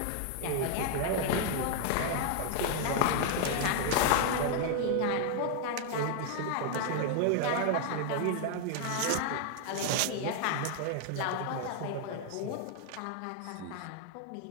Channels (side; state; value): both; different; correlation 0.00